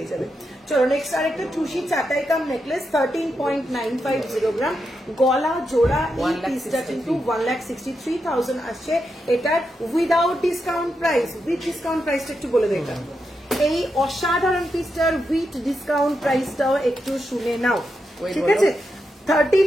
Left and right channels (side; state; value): both; normal; correlation 0.85